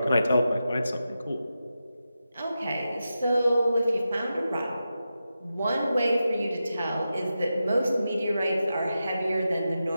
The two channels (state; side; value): inverted; both; correlation -0.90